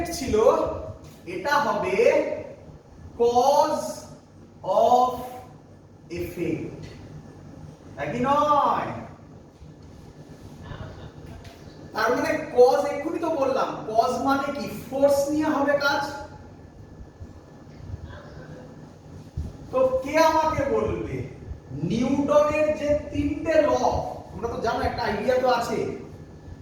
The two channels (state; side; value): identical; both; correlation 1.00